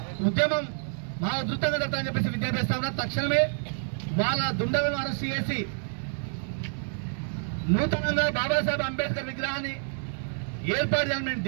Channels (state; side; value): silent; left; digital silence